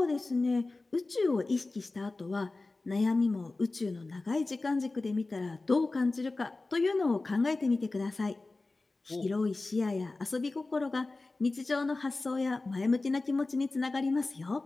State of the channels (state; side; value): quieter; right; 3.3 dB